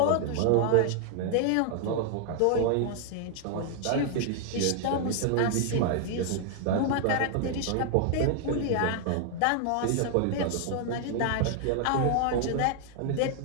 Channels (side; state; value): both; different; correlation 0.00